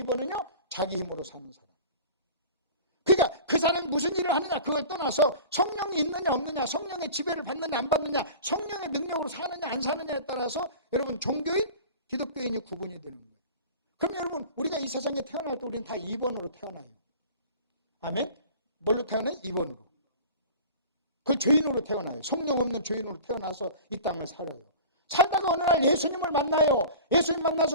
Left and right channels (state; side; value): inverted; both; correlation -0.40